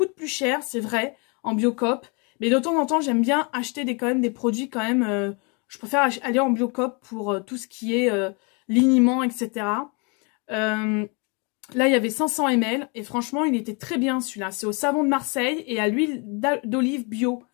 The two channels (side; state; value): right; quieter; 32.9 dB